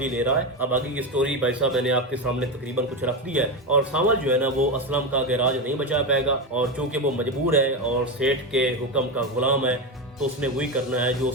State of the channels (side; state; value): both; normal; correlation 0.15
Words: ले रहा है। अब आगे की स्टोरी भाई साहब मैंने आपके सामने तकरीबन कुछ रख दी है और सावल जो है ना वो असलम का गैराज नहीं बचा पाएगा, और चूंकि वो मजबूर है और सेठ के हुक्म का गुलाम है तो उसने वही करना है जो